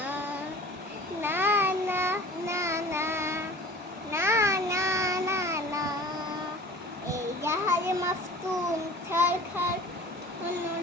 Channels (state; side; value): normal; both; correlation 0.43